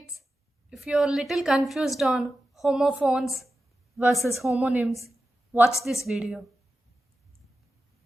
if you're a little confused on homophones versus homonyms, watch this video.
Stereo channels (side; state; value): both; normal; correlation 0.92